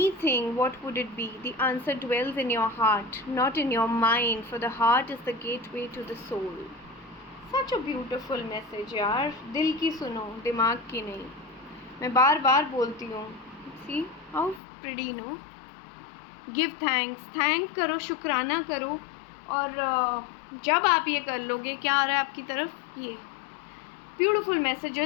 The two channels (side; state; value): right; drops out; at 14.6 s